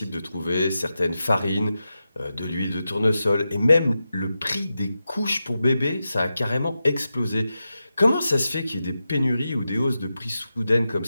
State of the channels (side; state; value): both; inverted; correlation -0.90